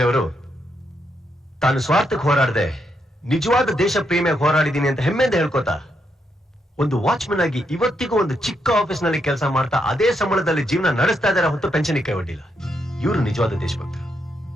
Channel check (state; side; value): normal; both; correlation 0.79